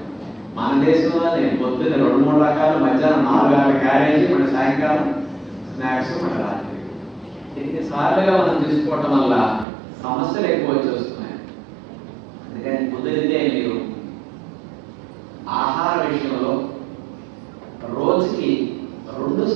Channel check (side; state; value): left; drops out; at 9.7 s